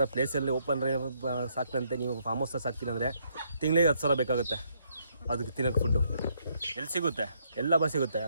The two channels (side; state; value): both; inverted; correlation -0.73